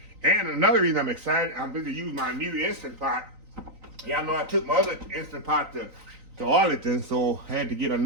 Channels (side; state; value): left; late; 3.9 ms